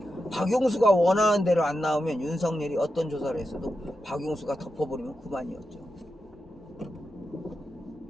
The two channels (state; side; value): normal; both; correlation 0.88